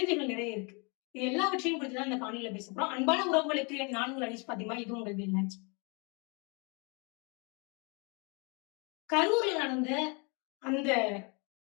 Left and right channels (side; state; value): right; quieter; 32.5 dB